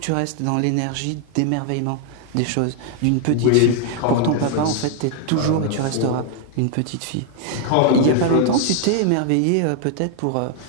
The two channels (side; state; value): both; different; correlation 0.00